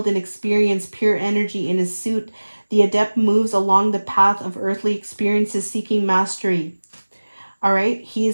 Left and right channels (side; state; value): both; inverted; correlation -1.00